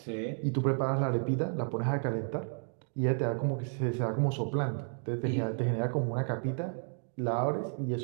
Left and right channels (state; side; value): silent; left; 56 dB below the other